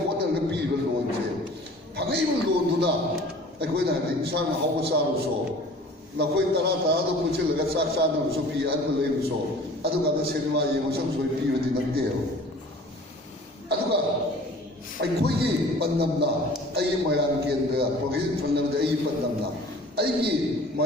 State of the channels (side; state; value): both; normal; correlation 0.46